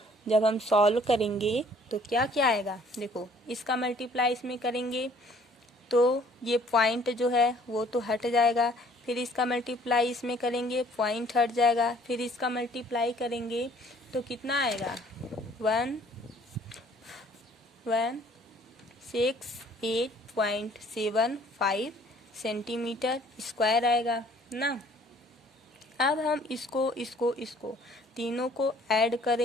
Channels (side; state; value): both; normal; correlation 0.57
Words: जब हम सॉल्व करेंगे तो क्या क्या आएगा, देखो इसका मल्टीप्लाई इसमें करेंगे तो ये पॉइंट जो है वो तो हट जाएगा, फिर इसका मल्टीप्लाई इसमें करेंगे पॉइंट हट जाएगा, फिर इसका मल्टीप्लाई करेंगे तो कितना आएगा 168.75 सेंटीमीटर स्क्वायर आएगा ना। अब हम इसको तीनों को ऐड